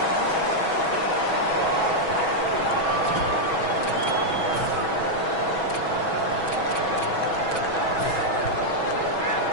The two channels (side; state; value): right; late; 6.2 ms